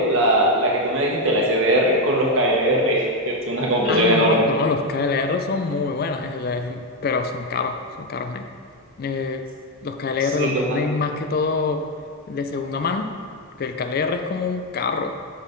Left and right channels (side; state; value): both; normal; correlation 0.04